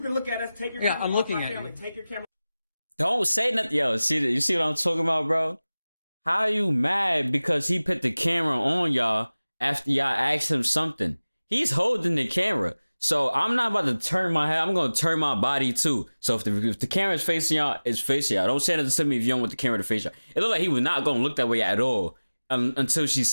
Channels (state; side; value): inverted; both; correlation -0.98